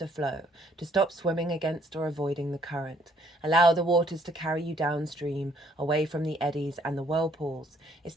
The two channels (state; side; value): normal; both; correlation 0.65